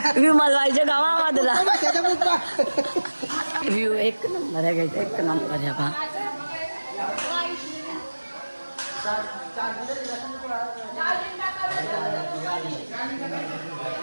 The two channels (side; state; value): both; inverted; correlation -1.00